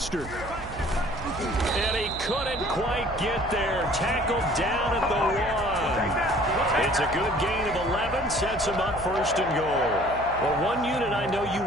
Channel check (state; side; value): noise; right; hum, 14 dB below the sound